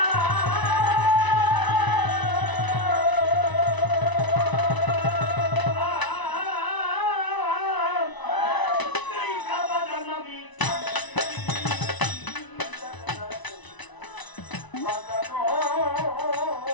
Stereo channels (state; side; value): late; right; 1.0 ms